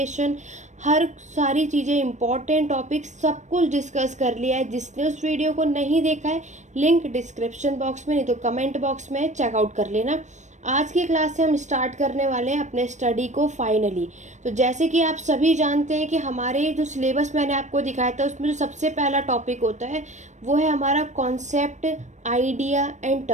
हर सारी चीज़ें, इंपॉर्टेंट टॉपिक सब कुछ डिस्कस कर लिया है। जिसने उस वीडियो को नहीं देखा है, लिंक डिस्क्रिप्शन बॉक्स में नहीं तो कमेंट बॉक्स में चेकआउट कर लेना। आज की क्लास से हम स्टार्ट करने वाले हैं अपने स्टडी को फाइनली। तो जैसे कि आप सभी जानते हैं कि हमारे जो सिलेबस मैंने आपको दिखाया था उसमें जो सबसे पहला टॉपिक होता है वो है हमारा कॉन्सेप्ट, आइडिया एंड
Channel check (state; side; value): late; left; 0.34 ms